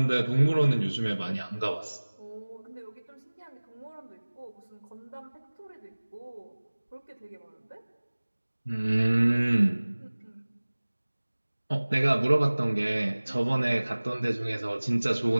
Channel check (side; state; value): both; inverted; correlation -1.00